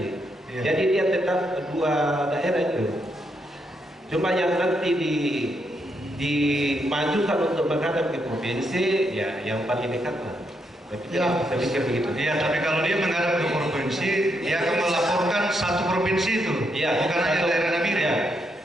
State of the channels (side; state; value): both; normal; correlation 0.79